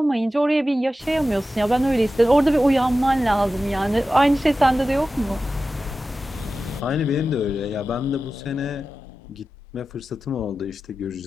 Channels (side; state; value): both; normal; correlation 0.94